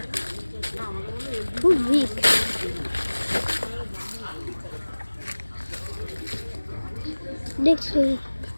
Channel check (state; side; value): inverted; both; correlation -1.00